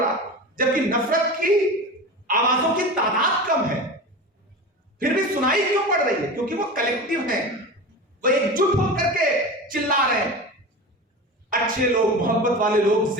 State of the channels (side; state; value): both; normal; correlation 0.29